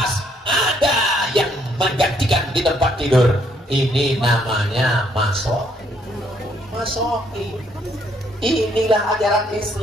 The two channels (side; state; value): both; normal; correlation 0.69